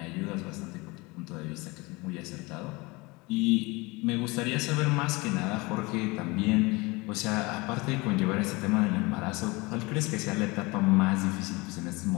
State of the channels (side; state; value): right; quieter; 24.7 dB